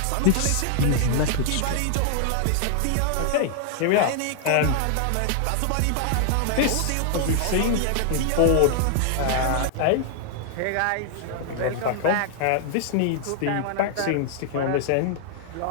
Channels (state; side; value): different; both; correlation 0.00